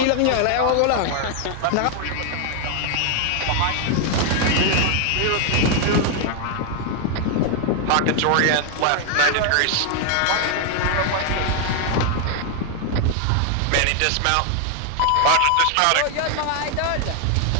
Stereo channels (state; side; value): different; both; correlation 0.00